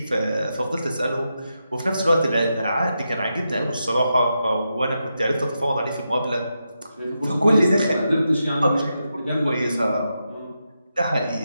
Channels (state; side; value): inverted; both; correlation -0.86